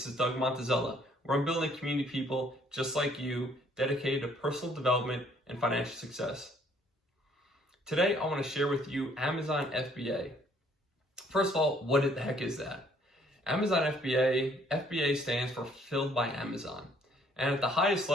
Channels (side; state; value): both; normal; correlation 0.63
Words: is Doug Montezella, where I'm building a community of people just like you, dedicated to personal development and financial success. Today, I want to share with you Amazon FBA. First of all, what the heck is that? Amazon FBA stands for Fulfilled by Amazon. And at the highest